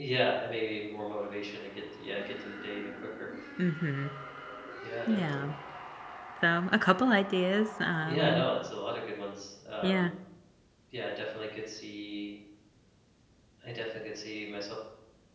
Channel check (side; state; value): both; identical; correlation 1.00